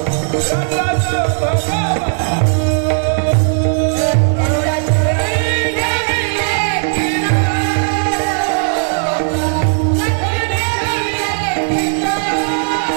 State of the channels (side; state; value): left; silent; digital silence